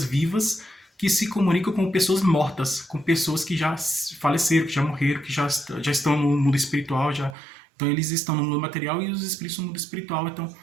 vivas que se comunicam com pessoas mortas, com pessoas que já faleceram, que já morreram, que já estão no mundo espiritual, então eles estão no mundo material e os espíritos no mundo espiritual. Então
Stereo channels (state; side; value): drops out; left; at 7.4 s